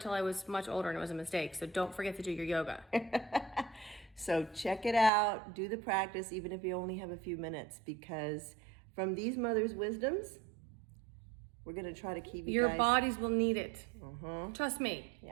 till I was much older and it was a mistake, so don't forget to do your yoga. So check it out, do the practice even if you only have a few minutes, because from these mothers' wisdoms, we're gonna try to keep you Your guys... bodies will need it. Trust me.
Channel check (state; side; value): drops out; left; at 5.1 s